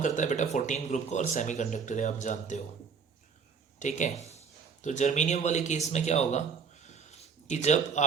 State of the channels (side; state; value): left; quieter; 5.9 dB